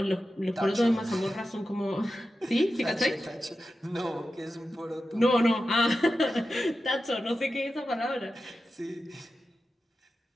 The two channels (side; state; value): both; normal; correlation 0.92